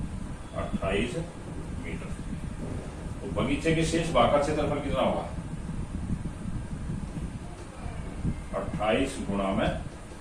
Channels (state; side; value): identical; both; correlation 1.00